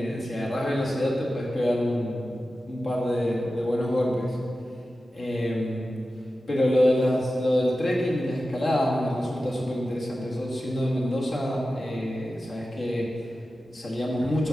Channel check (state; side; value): normal; both; correlation 0.93